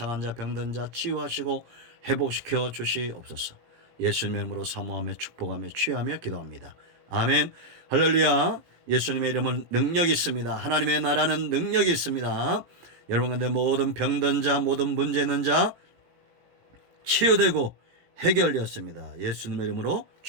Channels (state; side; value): late; left; 17 ms